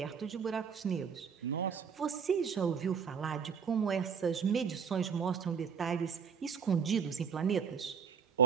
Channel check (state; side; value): quieter; left; 6.6 dB